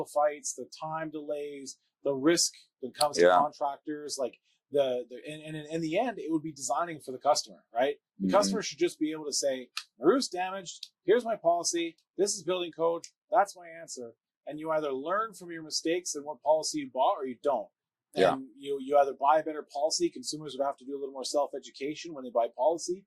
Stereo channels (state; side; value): identical; both; correlation 1.00